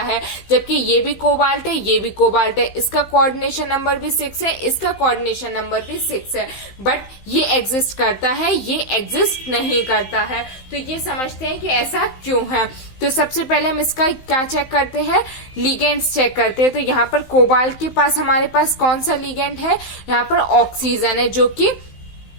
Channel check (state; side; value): late; right; 16 ms